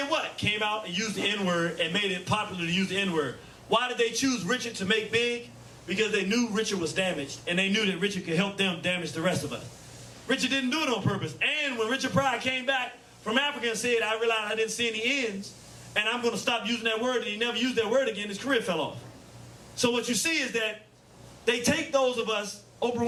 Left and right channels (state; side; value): identical; both; correlation 1.00